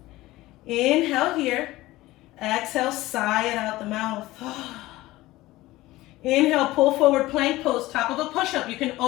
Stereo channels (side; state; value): right; quieter; 17.9 dB